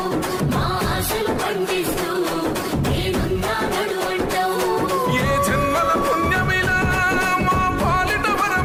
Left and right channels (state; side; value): identical; both; correlation 1.00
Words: ఏ జన్మల పుణ్యమిలా మా పాలిట